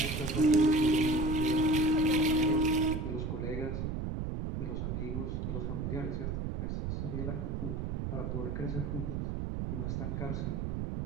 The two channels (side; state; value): right; noise; rumble, 2 dB below the sound